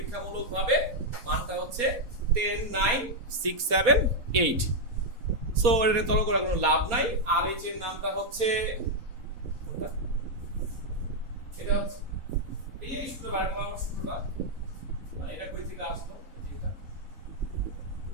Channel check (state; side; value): late; left; 4.3 ms